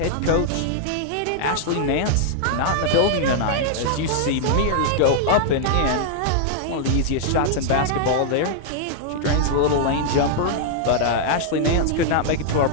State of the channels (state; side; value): different; both; correlation -0.01